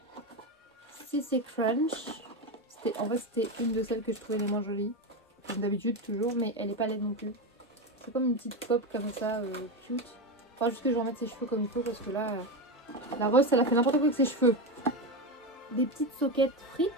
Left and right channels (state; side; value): normal; both; correlation 0.15